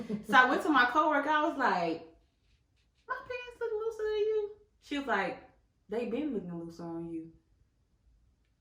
So I went to my coworker. I was like, my pants look looser than you. She was like, they been looking looser on you.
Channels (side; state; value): both; identical; correlation 1.00